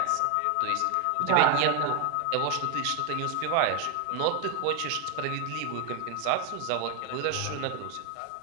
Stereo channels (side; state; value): both; different; correlation 0.01